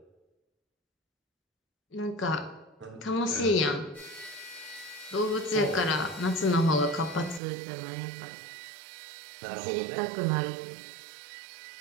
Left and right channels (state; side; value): drops out; left; at 7.4 s